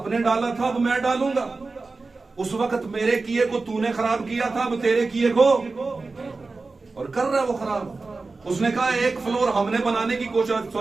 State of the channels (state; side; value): quieter; left; 3.8 dB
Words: डाला था, अब मैं डालूंगा। उस वक्त मेरे किए को तूने खराब किया था, अब तेरे किए को, और कर रहा है वो खराब। उसने कहा एक फ्लोर हमने बनाने की